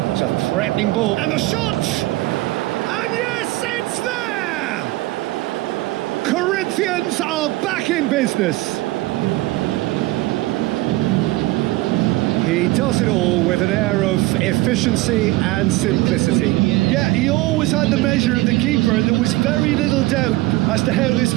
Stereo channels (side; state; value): left; quieter; 19.6 dB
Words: It's a threatening ball. And the shot! And yes, it's there! Corinthians are back in business. He does it all with an air of efficiency and simplicity. Yeah, he always had the measure of the keeper, and there was very little doubt as to how this